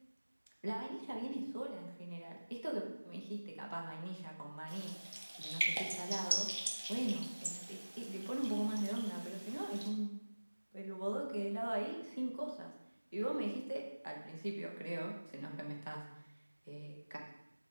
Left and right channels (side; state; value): both; inverted; correlation -1.00